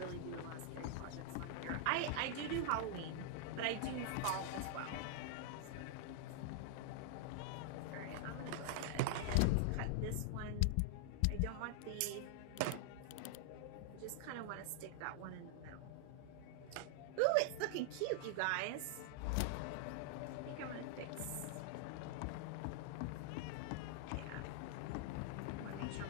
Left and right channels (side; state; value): both; different; correlation 0.00